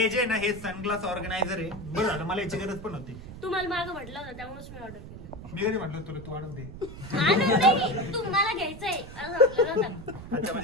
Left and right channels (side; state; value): right; noise; rumble, 13 dB below the sound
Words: जे ना हे सनग्लास ऑर्गनायझर आहे बरं झालं मला याची गरज पण होती तुम्हाला मागं म्हटलं होतं त्यामुळेच मी ऑर्डर केलं मी कधी म्हटलं तुला तू आणून दे तुम्हाला घ्यायचंय असं म्हटलं नव्हतं. अच्छा